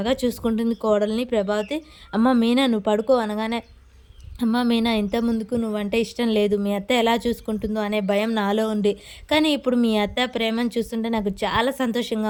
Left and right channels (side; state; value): both; identical; correlation 1.00